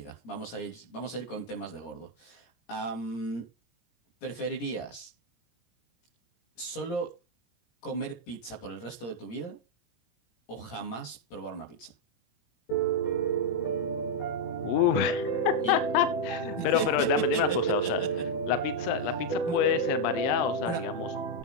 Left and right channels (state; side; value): late; right; 17 ms